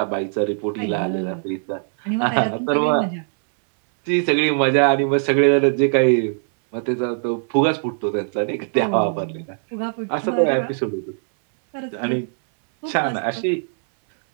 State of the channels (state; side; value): silent; left; digital silence